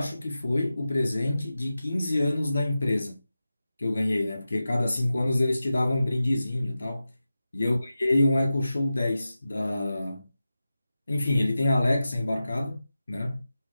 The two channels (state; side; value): inverted; both; correlation -0.93